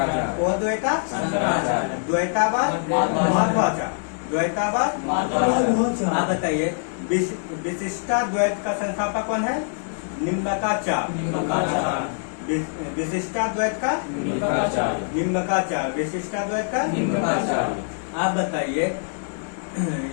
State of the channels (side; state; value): right; silent; digital silence